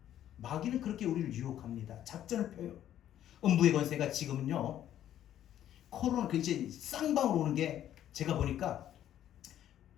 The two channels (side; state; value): right; quieter; 11.4 dB